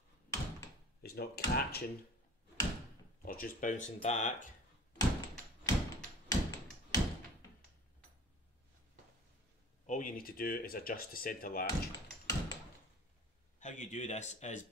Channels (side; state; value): both; normal; correlation 0.43